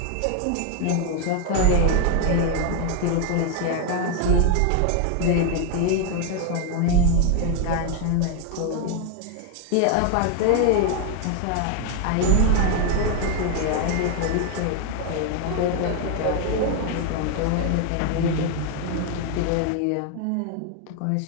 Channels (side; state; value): both; different; correlation 0.01